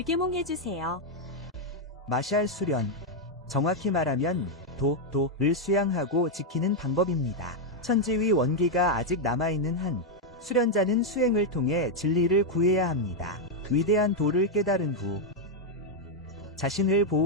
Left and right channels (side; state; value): both; normal; correlation 0.00